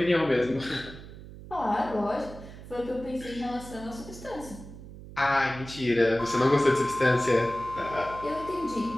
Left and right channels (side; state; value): right; noise; hum, 15 dB below the sound